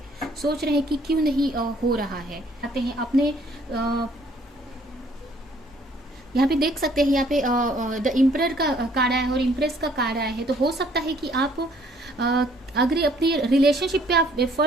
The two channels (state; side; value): normal; both; correlation 0.61